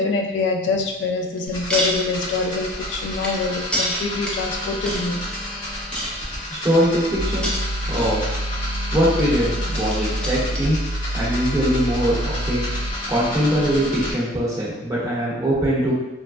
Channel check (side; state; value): both; normal; correlation 0.52